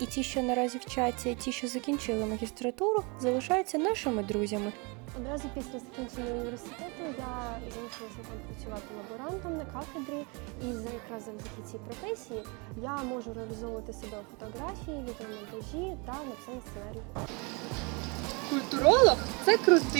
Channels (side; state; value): left; quieter; 30.3 dB